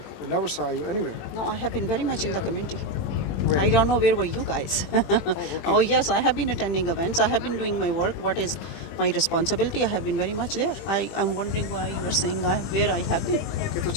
We never saw you anywhere. No, I have been very much in the community. Where? I don't know where were you guys. Oh yes, I have been attending events. I have been doing my work. What is my responsibility? I have been very much there. I'm wondering why you are saying where I have been. Okay, तो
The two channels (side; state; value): right; late; 20 ms